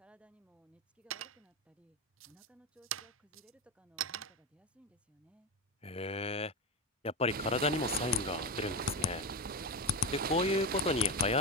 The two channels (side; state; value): both; normal; correlation 0.17